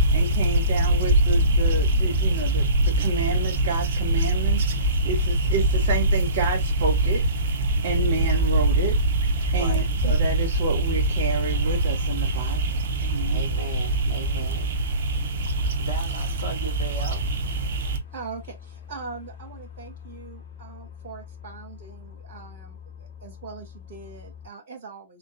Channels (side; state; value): both; inverted; correlation -0.39